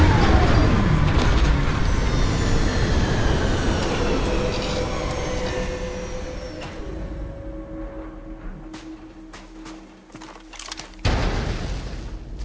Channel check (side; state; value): both; identical; correlation 1.00